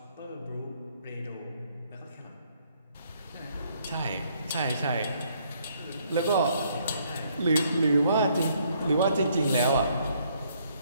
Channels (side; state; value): both; inverted; correlation -0.68